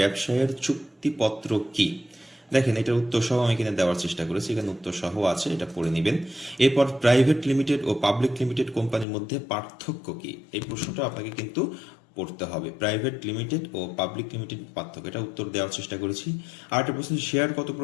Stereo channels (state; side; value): drops out; right; at 9.1 s